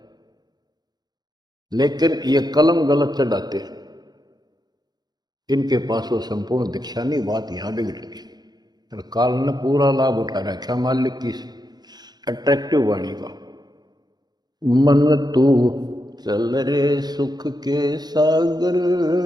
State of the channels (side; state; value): left; late; 0.20 ms